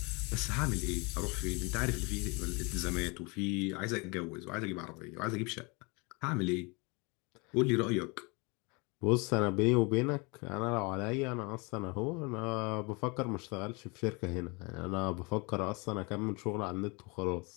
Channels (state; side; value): quieter; right; 29.3 dB